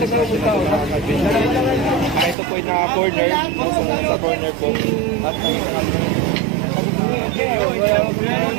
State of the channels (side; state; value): left; drops out; at 2.4 s